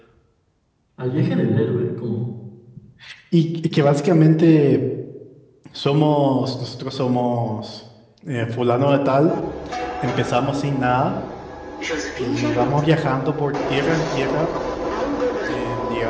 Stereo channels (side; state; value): both; identical; correlation 1.00